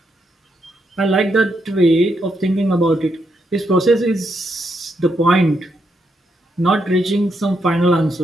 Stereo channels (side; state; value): both; normal; correlation 0.79